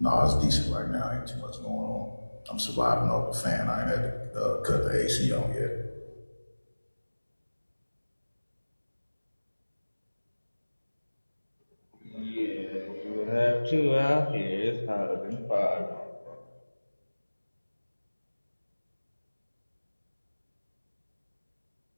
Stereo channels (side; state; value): both; inverted; correlation -1.00